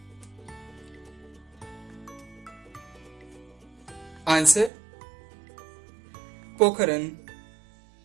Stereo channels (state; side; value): drops out; left; at 4.7 s